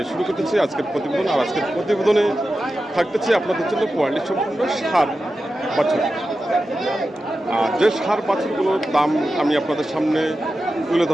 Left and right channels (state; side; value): normal; both; correlation 0.92